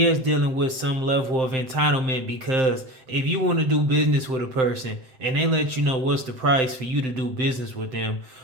is dealing with some level of entitlement, because if you want to do business with a person and they let you know what's the price for you to do business with them,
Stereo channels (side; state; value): left; late; 7.7 ms